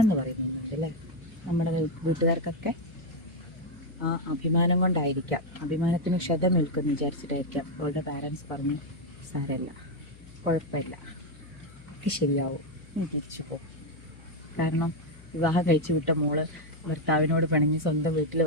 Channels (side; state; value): left; noise; hum, 21 dB below the sound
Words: എന്ന് പറയുന്നുണ്ട് അല്ലേ? നമ്മുടെ വീട്ടുകാർക്കൊക്കെ ആ അഭിമാനം കൊണ്ടായിരിക്കാം, അഭിമാനത്തിന് ക്ഷതമേൽക്കുമെന്ന് വിചാരിച്ചിട്ടായിരിക്കാം അവളുടെ പാരൻസ് പറഞ്ഞു, സാരമില്ല, കുഴപ്പമില്ല, ഒക്കെ ശരിയാവും, നീ തിരിച്ചു പോകും. കാരണം വിവാഹം കഴിച്ചു വിട്ട മോള് ഭർത്താവിനോട് പിണങ്ങി സ്വന്തം വീട്ടിൽ